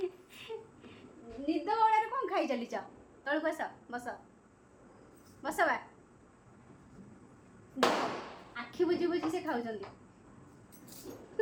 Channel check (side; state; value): both; identical; correlation 1.00